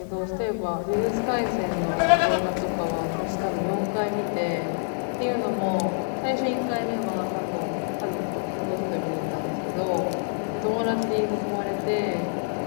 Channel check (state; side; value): silent; right; digital silence